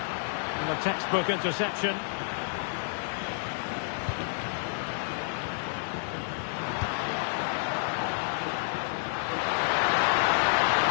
And a textbook interception.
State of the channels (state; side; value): silent; right; digital silence